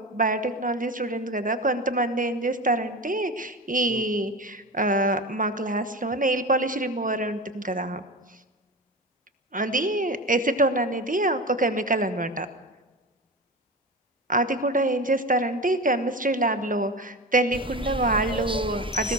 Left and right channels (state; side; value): normal; both; correlation 0.27